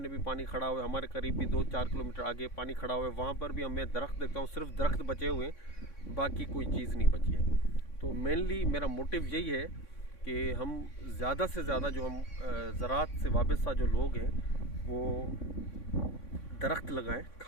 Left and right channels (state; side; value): late; right; 3.6 ms